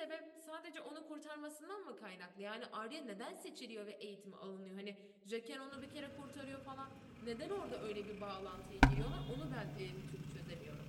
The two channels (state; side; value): identical; both; correlation 1.00